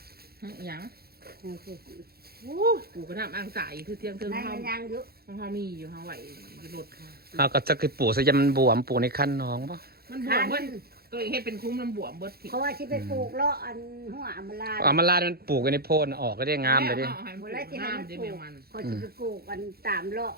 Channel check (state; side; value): late; left; 0.45 ms